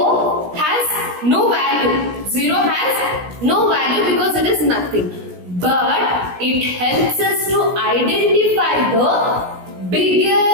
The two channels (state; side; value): late; left; 17 ms